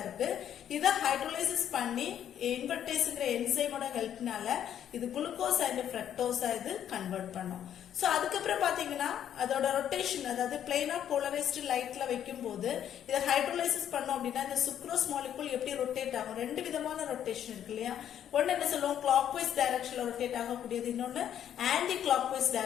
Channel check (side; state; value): right; quieter; 10.0 dB